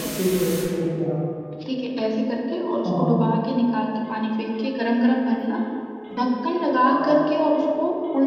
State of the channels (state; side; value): identical; both; correlation 1.00